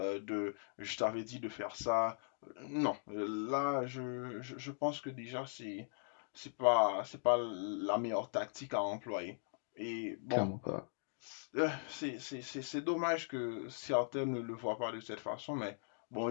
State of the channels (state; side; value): silent; right; digital silence